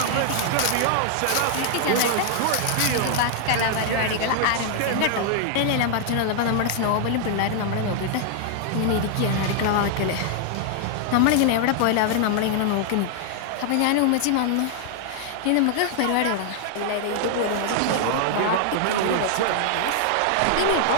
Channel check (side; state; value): both; different; correlation -0.01